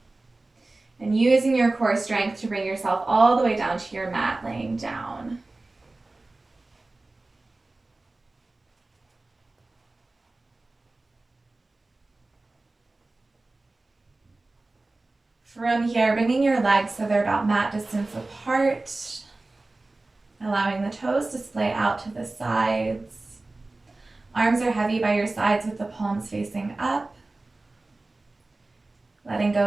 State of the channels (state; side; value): quieter; left; 3.1 dB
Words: and using your core strength to bring yourself all the way down to your mat, laying down. From here, bringing your legs so they're about mat distance apart, allowing the toes to splay out to the sides. Arms are heavy by your sides with the palms facing up. Letting go